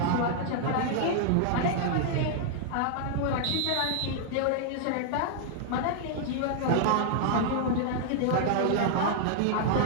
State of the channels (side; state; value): both; different; correlation -0.01